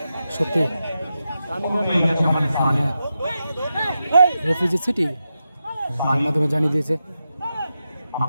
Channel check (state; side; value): inverted; both; correlation -0.89